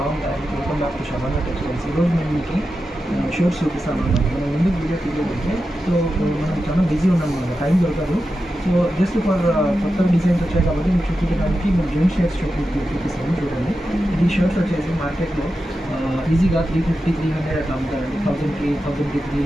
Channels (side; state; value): both; normal; correlation 0.90